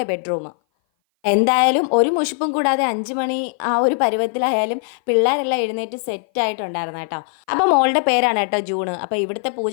ബെഡ്റൂം. എന്തായാലും ഒരു മുഷിപ്പും കൂടാതെ 5 മണി ആ ഒരു പരുവത്തിലായാലും പിള്ളേരെല്ലാം എഴുന്നേറ്റ് സെറ്റായിട്ടുണ്ടായിരുന്നു കേട്ടോ. അപ്പോൾ മോളുടെ പേരാണ് കേട്ടോ ജൂണ്. അപ്പോൾ ഇവിടുത്തെ പൂജ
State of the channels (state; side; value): silent; right; 58 dB below the other